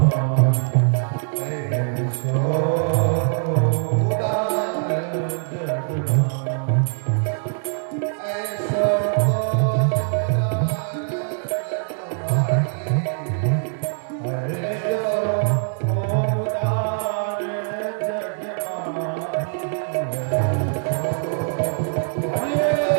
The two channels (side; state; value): left; silent; digital silence